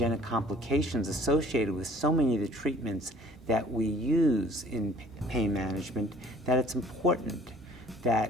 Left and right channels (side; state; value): both; normal; correlation 0.53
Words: complications associated with so many of the treatments that we use in pain management that it's important